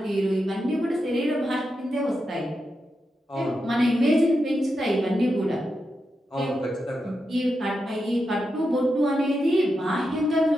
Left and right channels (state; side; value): normal; both; correlation 0.87